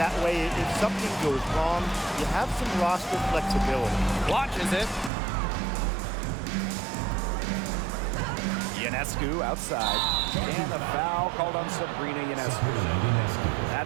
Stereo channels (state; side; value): drops out; left; at 5.1 s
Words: That way, if something goes wrong, you have some roster flexibility. Launches it. Ionescu outside. And a foul called on Sabrina Ionescu.